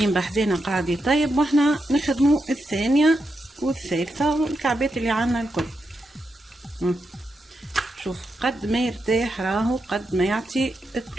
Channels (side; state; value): both; normal; correlation 0.85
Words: بحدنا قاعد يطيب واحنا نخدموا الثانية والثالثة والكعبات اللي عنا الكل. شوف قد ما يرتاح راهو قد ما يعطي